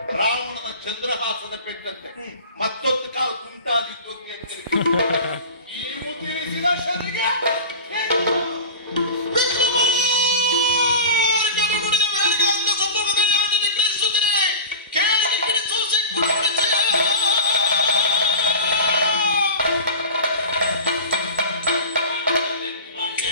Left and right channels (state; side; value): inverted; both; correlation -0.33